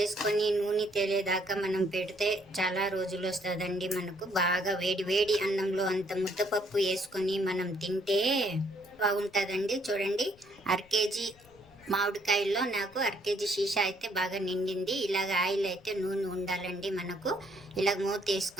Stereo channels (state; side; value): noise; left; rumble, 27 dB below the sound